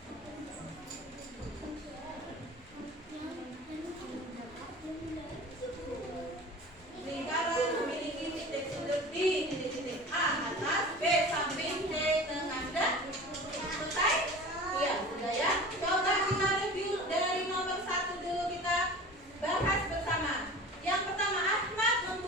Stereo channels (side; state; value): both; normal; correlation 0.38